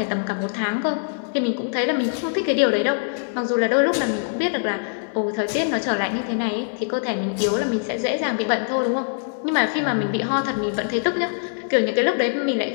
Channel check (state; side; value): silent; right; digital silence